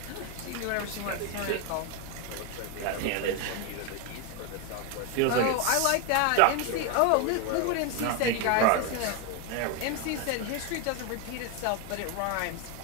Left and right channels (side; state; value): both; different; correlation 0.01